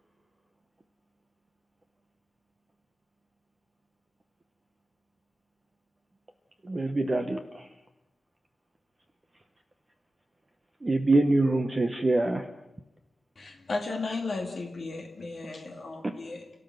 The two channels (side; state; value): both; normal; correlation 0.94